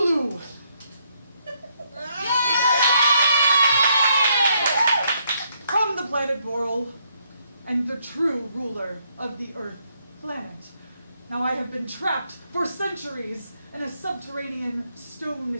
From the planet Boral, and the true ruler of the Earth planet. Now I have been trapped for centuries in a subterranean stone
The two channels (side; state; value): both; inverted; correlation -0.73